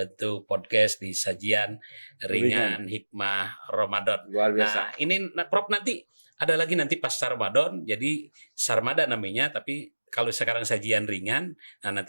podcast di sajian ringan hikmah Ramadan. Nah, ini Prof nanti ada lagi nanti pasca Ramadan. Jadi Sarmada namanya, tapi kalau sekarang sajian ringan, nah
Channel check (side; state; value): both; inverted; correlation -1.00